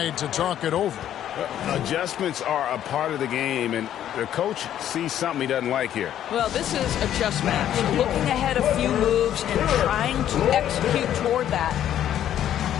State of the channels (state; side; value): quieter; right; 11.0 dB